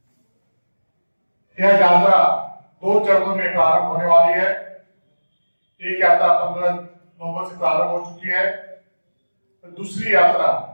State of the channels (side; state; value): both; inverted; correlation -1.00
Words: यह यात्रा 2 चरणों में प्रारंभ होने वाली है। एक यात्रा 15 नवंबर से प्रारंभ हो चुकी है और दूसरी यात्रा